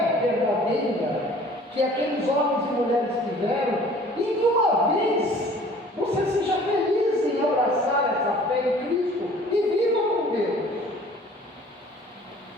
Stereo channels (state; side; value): normal; both; correlation 0.50